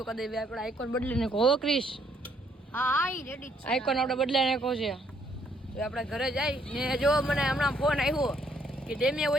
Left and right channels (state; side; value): normal; both; correlation 0.69